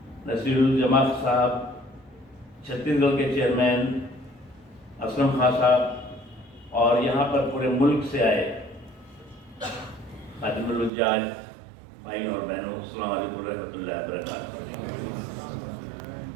नसीरुल जमात साहब, छत्तीसगढ़ के चेयरमैन असलम खान साहब और यहाँ पर पूरे मुल्क से आए खातिमुल हुज्जाज भाई और बहनों, अस्सलाम वालेकुम रहमतुल्लाहि व बरकातहू।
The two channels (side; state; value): left; drops out; at 10.9 s